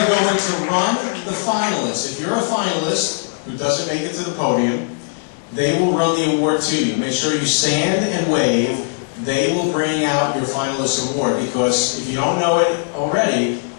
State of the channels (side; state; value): right; silent; 67 dB below the other